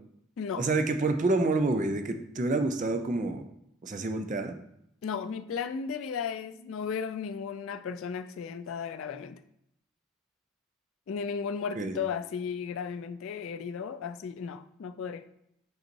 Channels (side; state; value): both; normal; correlation 0.41